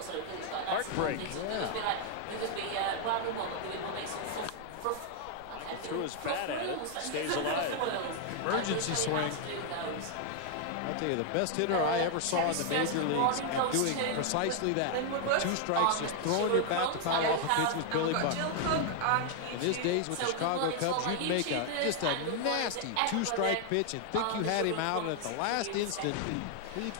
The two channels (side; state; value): both; different; correlation 0.00